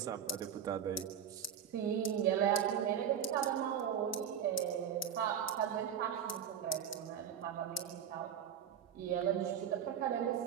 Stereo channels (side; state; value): left; quieter; 8.4 dB